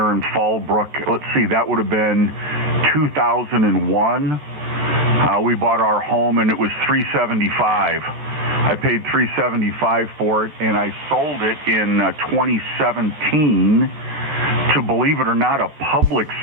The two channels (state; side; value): late; left; 14 ms